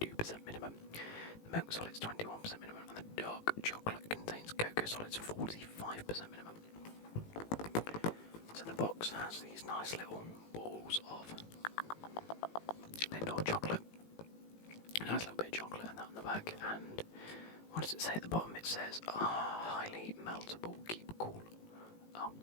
minimum, the milk solids 21% minimum, and the dark chocolate contains cocoa solids 45% minimum. So the box has these nice little balls of Lindt chocolate. A nice little bit of chocolate and that on the back. And what does it say at the bottom? It says, highly meltable, keep cool. Oh,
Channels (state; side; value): late; right; 18 ms